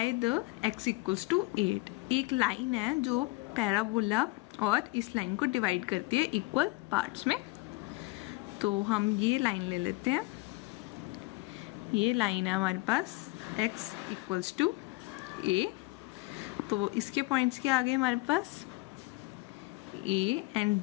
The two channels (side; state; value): right; quieter; 23.3 dB